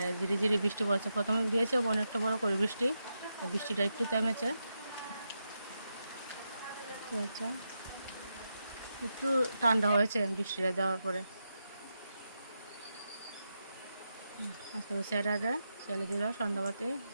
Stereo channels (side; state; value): both; inverted; correlation -0.86